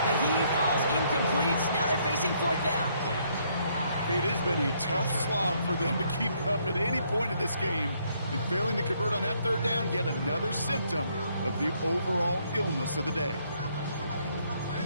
the heave falls incomplete. Now they're facing 4th down. It has been a tough slog for them to keep up at any point in this game. And failing to convert on that 3rd down, yet another symptom of the overall illness of the day.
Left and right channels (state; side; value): inverted; both; correlation -0.69